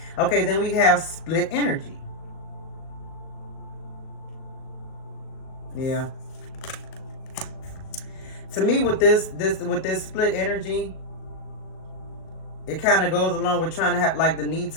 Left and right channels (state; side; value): late; right; 38 ms